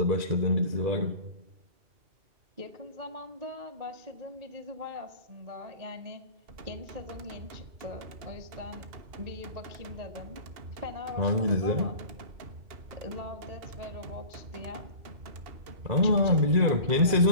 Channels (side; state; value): left; late; 2.7 ms